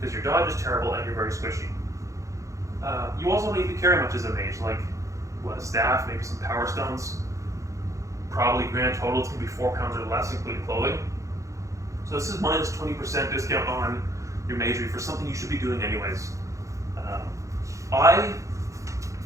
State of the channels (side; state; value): left; late; 0.15 ms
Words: your dodge is terrible and you're very squishy. You also don't need to carry much as a mage, like a staff, maybe some power stones. Probably grand total it's going to be 4 pounds or less, including clothing. So this is minus 20% discount on your Magery for something you should be doing anyways. I